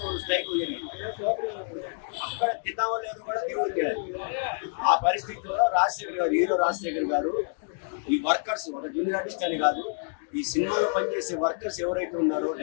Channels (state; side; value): silent; right; 59 dB below the other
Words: స్ట్రైక్ జరిగింది. అక్కడ తిన్నామో లేదు కూడా దేవుడు తెలియదు. ఆ పరిస్థితుల్లో రాజశేఖర్ గారు, హీరో రాజశేఖర్ గారు ఈ వర్కర్స్, ఒక జూనియర్ ఆర్టిస్ట్ అని కాదు, ఈ సినిమాలో పనిచేసే వర్కర్స్ ఎవరైతే ఉన్నారో